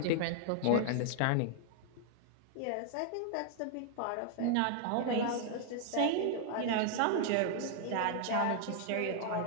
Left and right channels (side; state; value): both; different; correlation 0.00